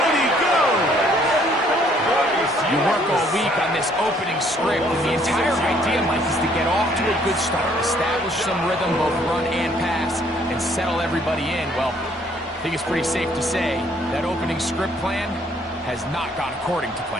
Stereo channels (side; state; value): both; normal; correlation 0.64